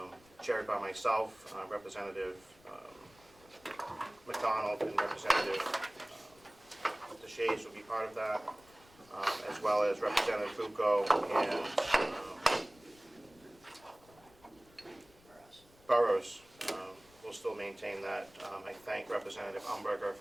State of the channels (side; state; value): left; noise; rumble, 27 dB below the sound